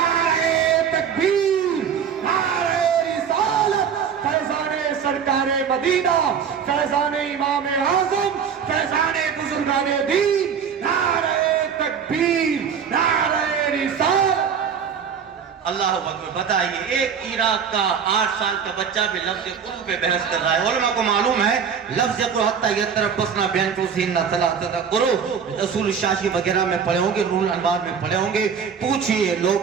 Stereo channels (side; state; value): left; quieter; 7.1 dB